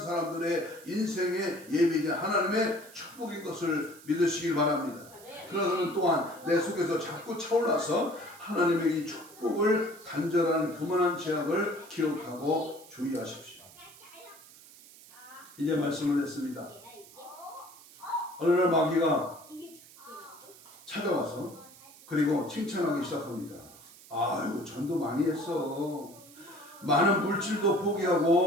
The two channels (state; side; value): noise; right; hiss, 21 dB below the sound